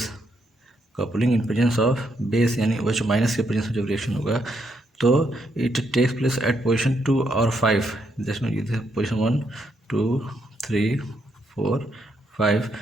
coupling in presence of base यानी OH माइनस के प्रेजेंस में जब रिएक्शन होगा तो it takes place at position 2 और 5, जिसमें पोजीशन 1 2 3 4 5,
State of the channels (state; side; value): normal; both; correlation 0.77